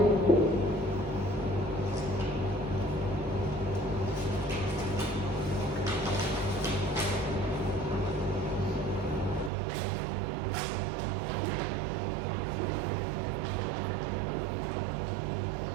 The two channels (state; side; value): drops out; left; at 9.5 s